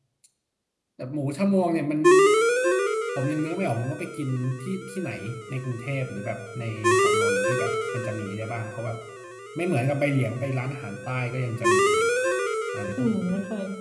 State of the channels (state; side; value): identical; both; correlation 1.00